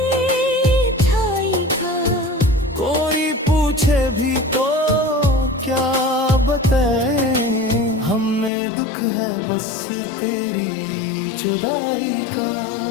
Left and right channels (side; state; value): right; drops out; at 8.5 s